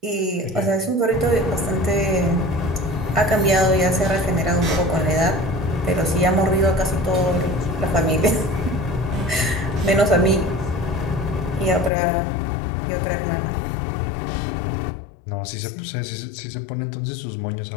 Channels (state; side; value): drops out; right; at 11.9 s